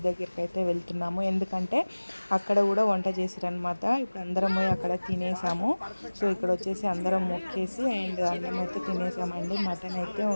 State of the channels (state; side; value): inverted; both; correlation -1.00